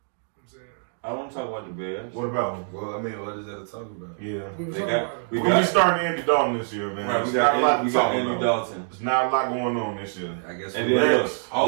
I'm saying. I want to talk about the Bears. What about them? Well, I mean, what is that to talk about? Yeah. We starting Andy Dalton this year, man. Right, we got Andy Dalton. There's not a lot going on this year. I guess. And then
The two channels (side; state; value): left; silent; digital silence